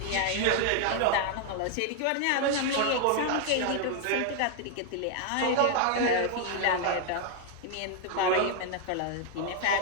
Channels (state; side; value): different; both; correlation 0.00